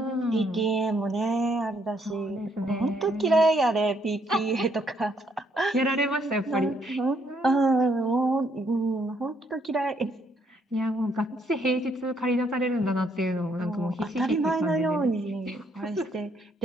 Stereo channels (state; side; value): normal; both; correlation 0.71